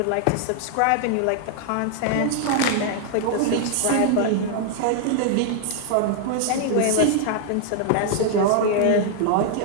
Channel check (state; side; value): different; both; correlation 0.00